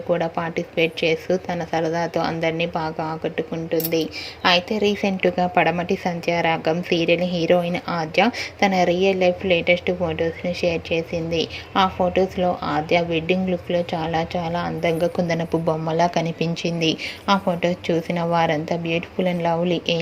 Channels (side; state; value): both; identical; correlation 1.00